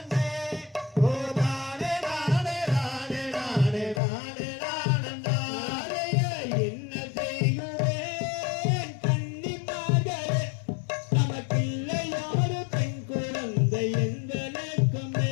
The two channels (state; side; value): drops out; right; at 4.0 s